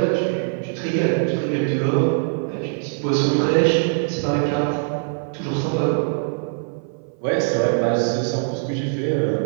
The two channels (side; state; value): left; silent; 59 dB below the other